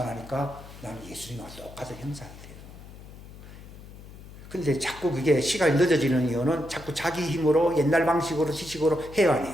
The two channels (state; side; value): noise; left; hum, 16 dB below the sound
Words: 나는 예수님과 똑같은 형상이 돼요. 근데 자꾸 그게 시간이 늦어지는 이유는 자꾸 자기 힘으로 옛날 방식으로 지식으로 해야